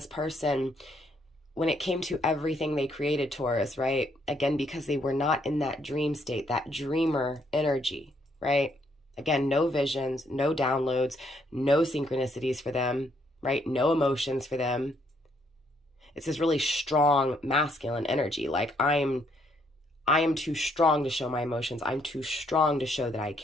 person, when it came to everything they created, Taurus, right? Again, because they were not in that dream state, that dreamer energy, right? Again, no visions, no downloads, no synchronicities for them, right? No emotions for them. It's this really strong masculine energy. Like I am too strong to show my emotions. I'm too strong to show that I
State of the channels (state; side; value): normal; both; correlation 0.71